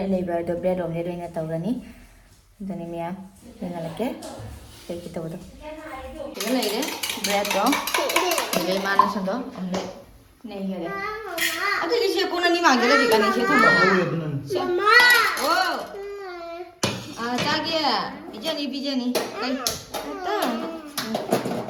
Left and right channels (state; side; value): identical; both; correlation 1.00